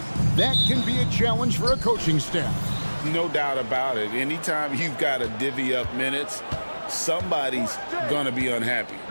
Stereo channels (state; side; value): inverted; both; correlation -1.00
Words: that can be a challenge for a coaching staff. No doubt about it. Anytime you've got to divvy up minutes, somebody's going to be unhappy.